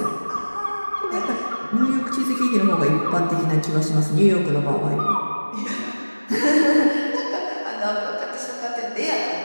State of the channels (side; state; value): both; inverted; correlation -1.00